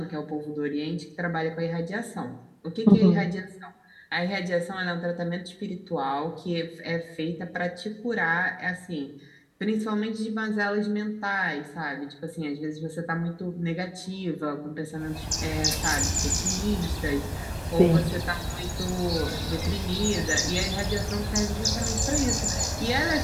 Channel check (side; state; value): both; identical; correlation 1.00